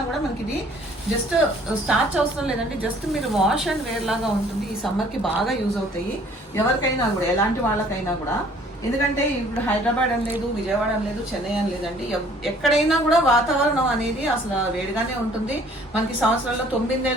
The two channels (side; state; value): both; normal; correlation 0.56